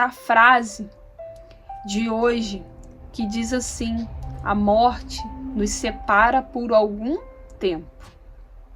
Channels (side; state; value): both; identical; correlation 1.00